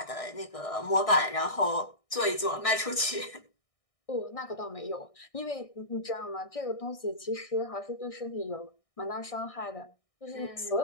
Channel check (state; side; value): late; right; 1.6 ms